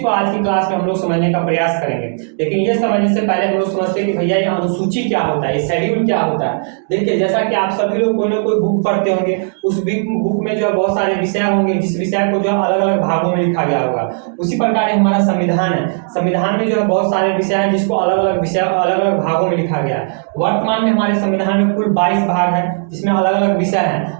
आज की क्लास में हम लोग समझने का प्रयास करेंगे। लेकिन ये समझने से पहले हम लोग समझते हैं कि भैया ये अनुसूची क्या होता है, ये शेड्यूल क्या होता है। देखिए, जैसा कि आप सभी लोग कोई ना कोई बुक पढ़ते होंगे, उस बुक में जो है बहुत सारे विषय होंगे, जिस विषय को जो अलग अलग भागों में लिखा गया होगा। उसी प्रकार हमारा संविधान है, संविधान में जो है बहुत सारे विषय हैं जिसको अलग अलग विषय अलग अलग भागों में लिखा गया है। वर्तमान में हमारे संविधान में कुल 22 भाग है, जिसमें अलग अलग विषय हैं।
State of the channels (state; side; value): silent; left; digital silence